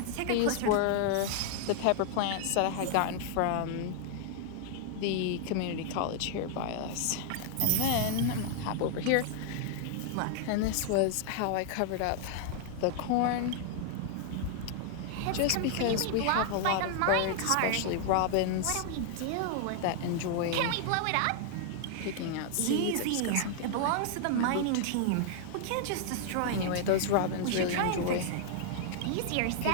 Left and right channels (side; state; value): both; different; correlation 0.00